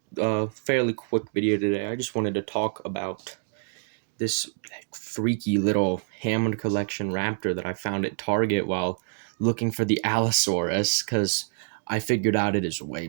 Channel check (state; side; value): silent; left; 60 dB below the other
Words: a fairly quick video today. I just wanted to talk about this freaky little Hammond Collection raptor that I found at Target while looking for the Allosaurus, because I figured out it is way